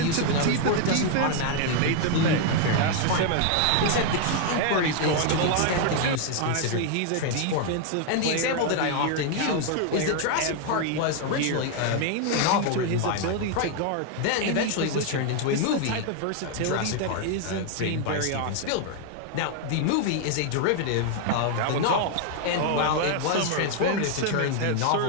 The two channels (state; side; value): different; both; correlation 0.00